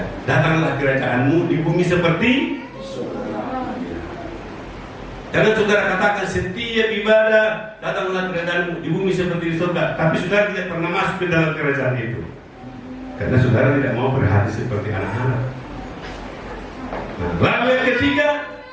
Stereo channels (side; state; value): both; identical; correlation 1.00